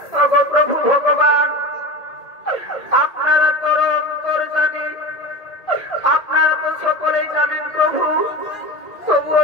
প্রভু ভগবান আপনারা তো অন্তর জানি, আপনারা তো সকলেই জানেন প্রভু, তবুও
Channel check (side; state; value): right; late; 1.8 ms